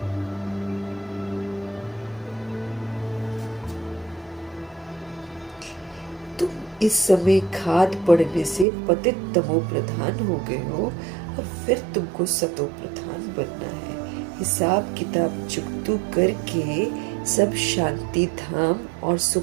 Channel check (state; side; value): drops out; left; at 8.7 s